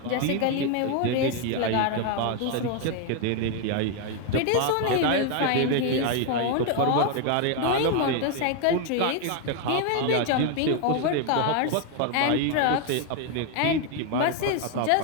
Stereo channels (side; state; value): both; different; correlation 0.01